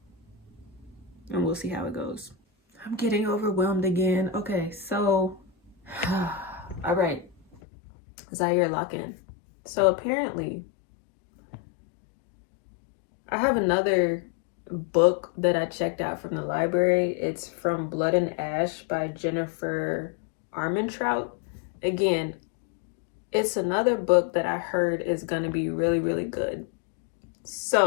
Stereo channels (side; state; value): right; drops out; at 7.6 s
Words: And we'll see how it goes. I'm getting overwhelmed again. Okay, so... all right. Zaire, lock in. So apparently, I have another book that I checked out from the library. It's From Blood and Ash by Jennifer Armentrout. Again, it's another book that I heard is going to be really, really good.